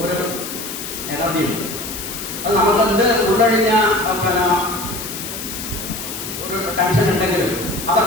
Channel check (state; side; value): noise; left; hiss, 8 dB below the sound